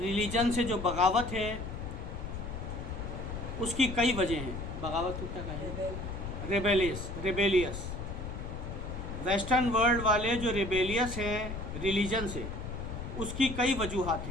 سے جو بغاوت ہے اس کی کئی وجہ ہیں۔ بغاوت کو کیا کہیں؟ ریبیلیس۔ ویسٹرن ورلڈ والے جو ریبیلیس ہیں ریلیجن سے، اس کی کئی وجوہات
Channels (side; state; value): left; noise; rumble, 7 dB below the sound